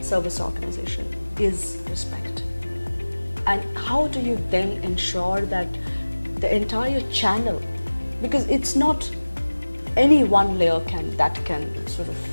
service organization, is respect. And how do you then ensure that the entire channel, because it's not any one layer can sort of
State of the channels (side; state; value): both; inverted; correlation -1.00